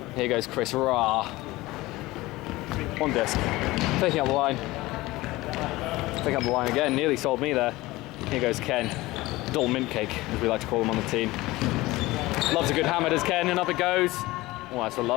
Here goes Chris Ra. On disc. Taking up the line. Taking up the line again. Nearly sold me there. Here goes Ken. Dull mint cake, as we like to call him on the team. Loves a good hammer, does Ken, and up it goes. Oh, that's a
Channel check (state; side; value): quieter; right; 19.4 dB